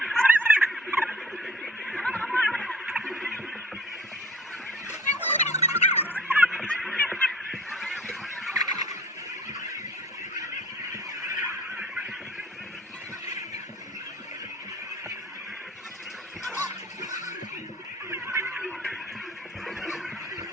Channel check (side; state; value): both; normal; correlation 0.48